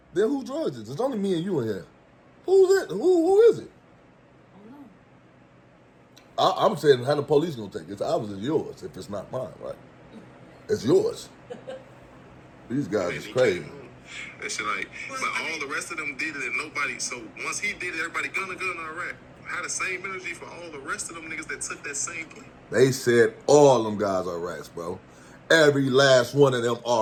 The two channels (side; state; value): both; identical; correlation 1.00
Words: then who drugs is it? It's only me and you in here. Who's it? Who is it? I'm saying how the police gonna take it. It's obviously yours if it's not mine, right? It's yours. These guys is He crazy. came home. That shit like, but all the rest of them did it and nobody. So once he did it, everybody Gunna, all right. Had the same energy for all the rest of them niggas that took that same plea. They said all them guys are rats, bro. Every last one of them